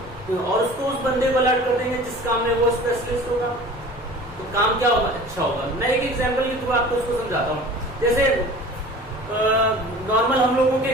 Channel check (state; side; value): normal; both; correlation 0.42